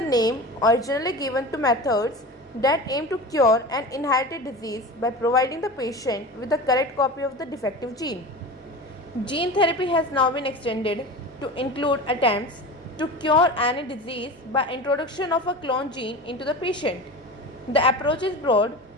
originally given to methods that aim to cure an inherited disease by providing the patient with the correct copy of the defective gene. Gene therapy has now been extended to include attempts to cure any disease by introduction of a clone gene into the patient. The approach is broad,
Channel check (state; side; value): normal; both; correlation 0.31